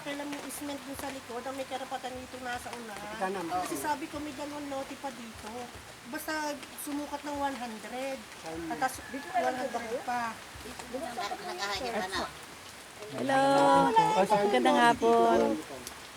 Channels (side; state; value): both; identical; correlation 1.00